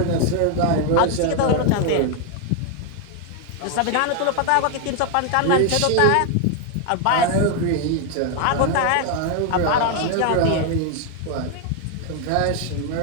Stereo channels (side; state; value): both; different; correlation 0.00